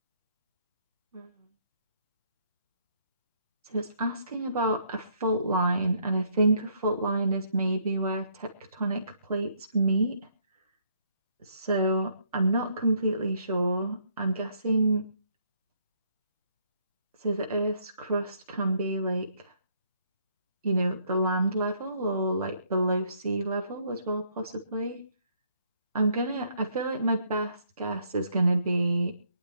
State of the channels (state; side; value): inverted; both; correlation -0.69